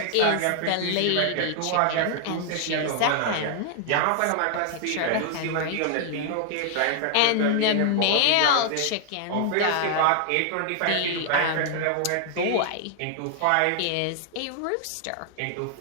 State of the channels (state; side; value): different; both; correlation 0.00